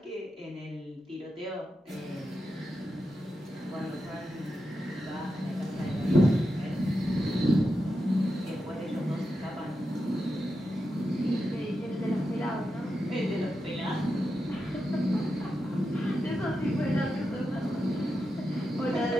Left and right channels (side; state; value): both; normal; correlation 0.88